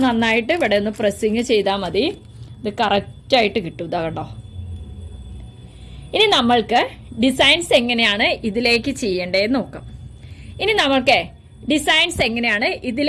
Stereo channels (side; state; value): both; identical; correlation 1.00